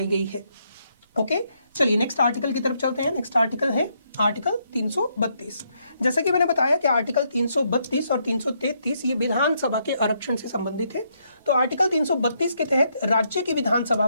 गई है। ओके, चलिए नेक्स्ट आर्टिकल की तरफ चलते हैं। नेक्स्ट आर्टिकल है आर्टिकल 332। जैसा कि मैंने बताया कि आर्टिकल 332 और 333 ये विधानसभा के आरक्षण से संबंधित है। तो आर्टिकल 332 के तहत राज्य की विधानसभा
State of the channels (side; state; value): both; inverted; correlation -0.75